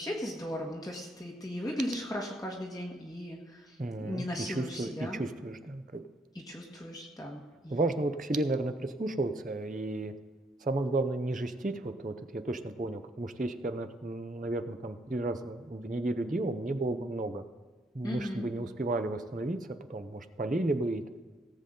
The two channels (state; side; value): normal; both; correlation 0.72